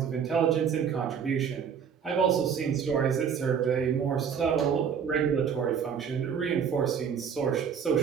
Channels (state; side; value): quieter; left; 7.2 dB